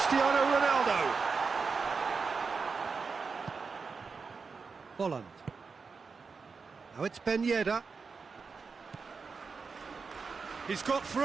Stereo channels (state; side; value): quieter; left; 5.0 dB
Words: Ronaldo. Folland. Now it's Ben Yedder. He's got